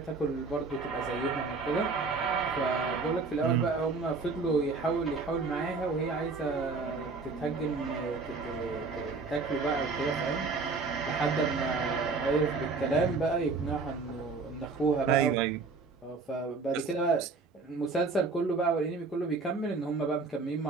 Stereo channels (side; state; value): left; quieter; 4.2 dB